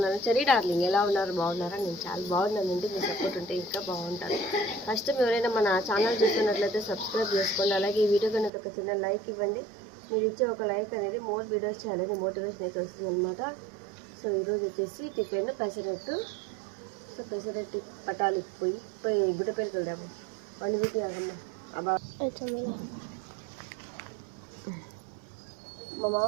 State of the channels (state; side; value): drops out; left; at 8.5 s